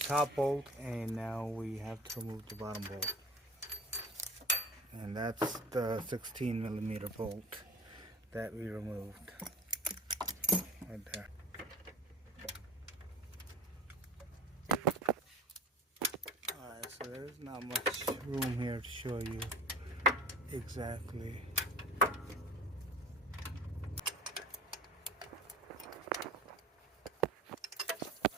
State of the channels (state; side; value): normal; both; correlation 0.39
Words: bolt and now we have to remove the bottom bolt. And that's the 16 millimeter bolt that we removed. right there. Alright, so there's not much room here to show you exactly.